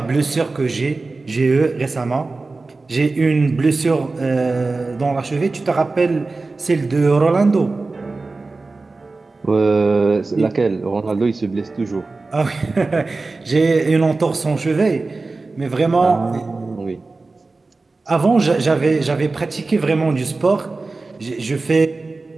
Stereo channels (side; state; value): left; quieter; 3.6 dB